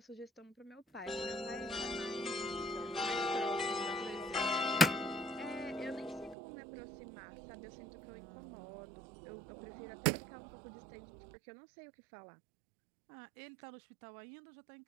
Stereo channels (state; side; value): drops out; left; at 6.4 s